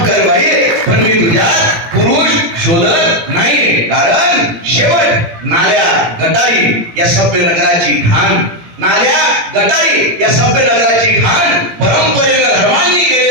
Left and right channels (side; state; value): left; late; 17 ms